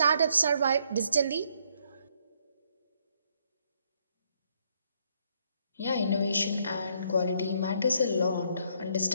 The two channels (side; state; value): both; inverted; correlation -0.70